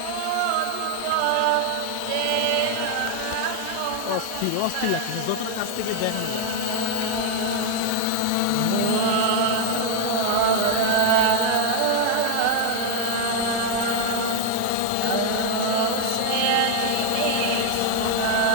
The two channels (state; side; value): different; both; correlation 0.01